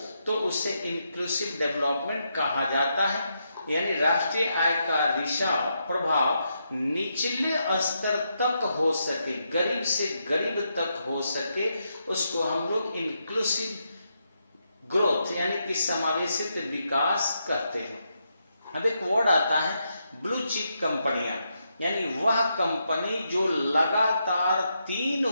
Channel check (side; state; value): both; inverted; correlation -0.82